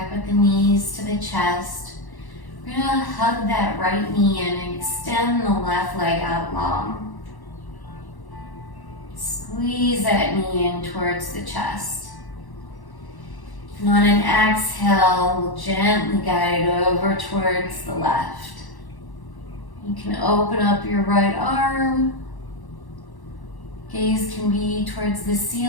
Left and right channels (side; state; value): right; late; 1.1 ms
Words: with the knees to the chest. We're going to hug that right knee in and extend the left leg out long. Squeeze that knee in towards the chest. And on an exhale, we'll gently guide it over towards the left. You can open up your right arm. Gaze can be towards the